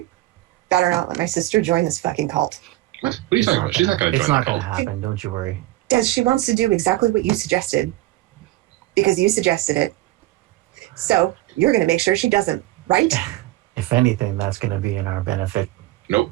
better not let my sister join this fucking cult. What are you talking about? She's not going to join It's not the going to cult. happen. Don't you worry. Des, she wants to do exactly what you suggested. Because you suggested it. So you're going to make sure she doesn't, right? If anything, that's going to be in our benefit. Nope.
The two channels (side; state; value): left; quieter; 17.1 dB